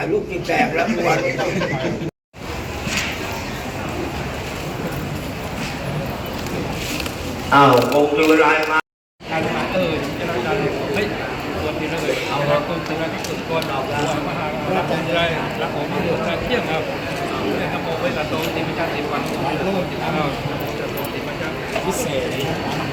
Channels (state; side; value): identical; both; correlation 1.00